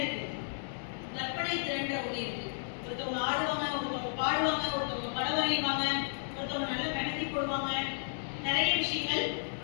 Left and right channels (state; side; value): silent; right; digital silence